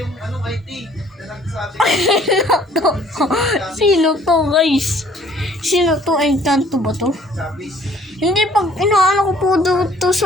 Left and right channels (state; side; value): normal; both; correlation 0.58